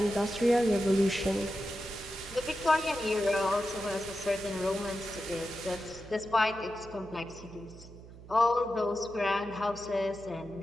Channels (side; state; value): right; noise; hum, 17 dB below the sound